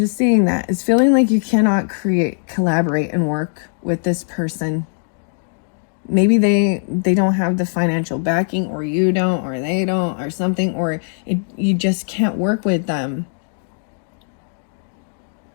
seeing that. It's feeling like you cannot collaborate and work with this person. Maybe they don't have the financial backing, or you don't, or they don't, or something, or you just can't work with them.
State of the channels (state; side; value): silent; right; 58 dB below the other